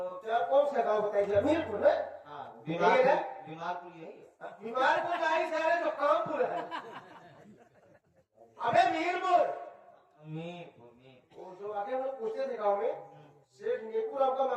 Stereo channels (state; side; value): identical; both; correlation 1.00